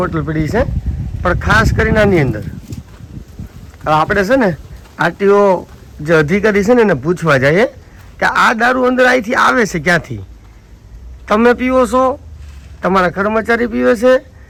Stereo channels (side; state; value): both; identical; correlation 1.00